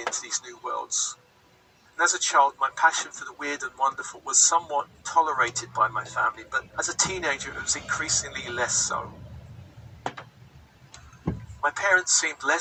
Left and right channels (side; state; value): both; identical; correlation 1.00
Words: these new worlds. And as a child, my passion for the weird and wonderful was somewhat tolerated by my family, but as a teenager, it was increasingly less so. My parents seemed